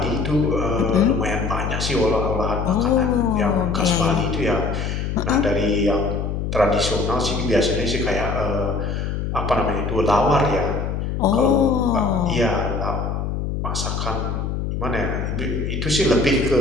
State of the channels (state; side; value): noise; left; hum, 2 dB below the sound